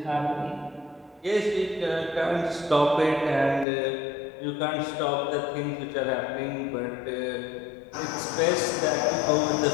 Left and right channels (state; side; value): drops out; right; at 3.7 s